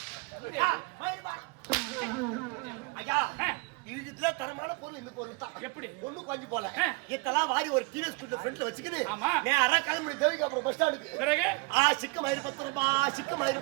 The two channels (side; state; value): left; quieter; 29.8 dB